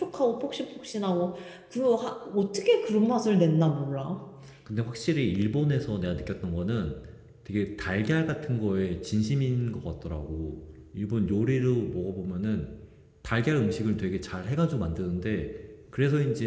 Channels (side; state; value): both; identical; correlation 1.00